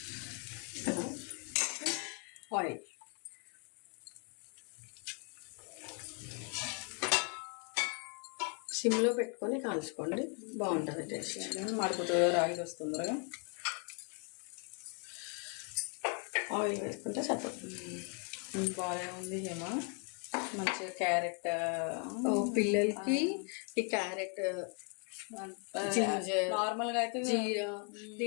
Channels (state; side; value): quieter; right; 39.3 dB